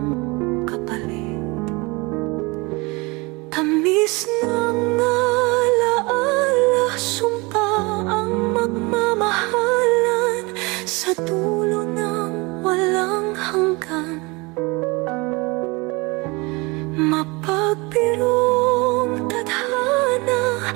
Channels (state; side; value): quieter; left; 25.9 dB